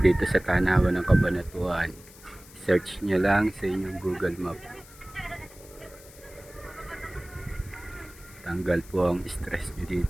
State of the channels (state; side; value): noise; left; hiss, 21 dB below the sound